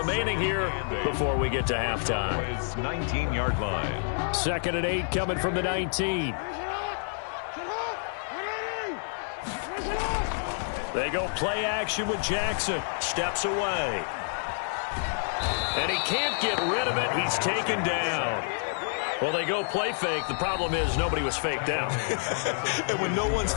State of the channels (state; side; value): silent; right; digital silence